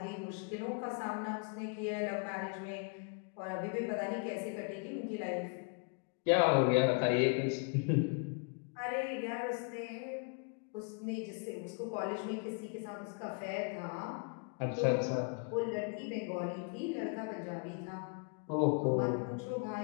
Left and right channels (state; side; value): quieter; right; 37.5 dB